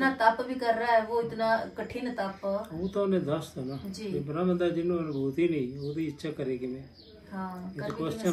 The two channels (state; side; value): identical; both; correlation 1.00